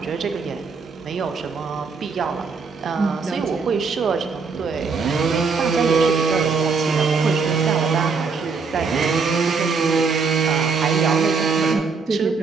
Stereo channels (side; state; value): left; quieter; 4.9 dB